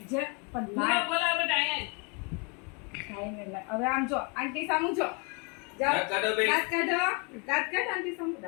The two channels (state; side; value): quieter; right; 33.3 dB